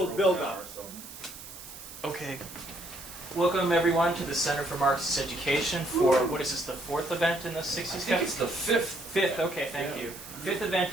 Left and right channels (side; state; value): right; noise; hiss, 14 dB below the sound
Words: build-up. Okay. Welcome everyone to the Center for Marxist Education for, what is this, the fourth event in the 60s Cafe? I think it's the fifth. Fifth, okay, thank you. Fifth